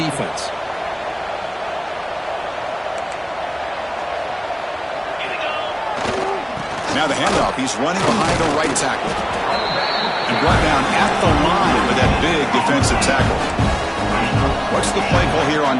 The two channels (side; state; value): both; identical; correlation 1.00